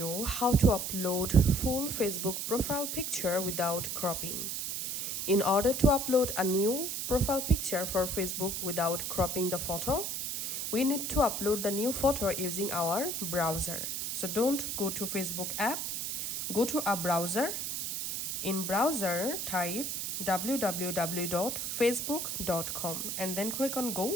how to upload full Facebook profile picture without cropping. In order to upload a new profile picture for Facebook without cropping the photo, we need to upload the new photo using our browser. So don't go to Facebook app, go to a browser. In browser, type www.facebook.com and then click on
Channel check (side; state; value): right; noise; hiss, 3 dB below the sound